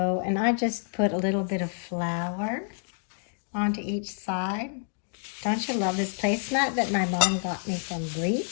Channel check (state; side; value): silent; right; 59 dB below the other